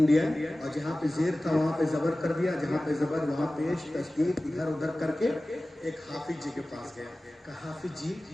اور جہاں پہ زیر تھا وہاں پہ زبر کر دیا، جہاں پہ زبر وہاں پیش تشدید ادھر ادھر کر کے ایک حافظ جی کے پاس گیا. کہا حافظ جی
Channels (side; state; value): both; normal; correlation 0.97